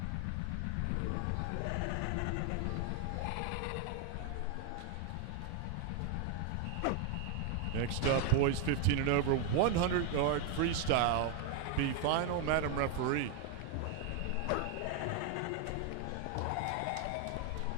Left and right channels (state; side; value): different; both; correlation 0.01